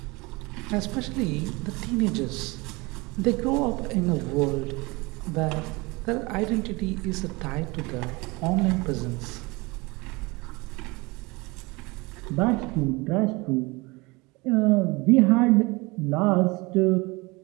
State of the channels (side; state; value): left; quieter; 24.8 dB